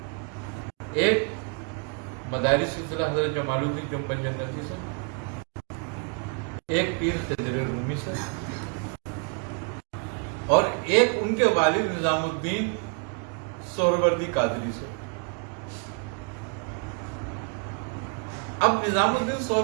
ایک مداری سلسلہ حضرت جمال الدین جنبن جنتی سے، ایک پیر خضر رومی سے، اور ایک ان کے والد نظام الدین سہروردی قادری سے۔ اب نظام الدین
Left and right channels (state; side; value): quieter; left; 35.7 dB